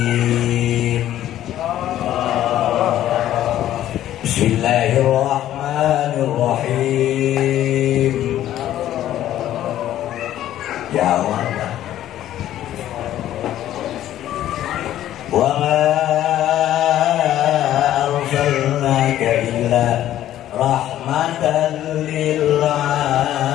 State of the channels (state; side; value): quieter; right; 12.6 dB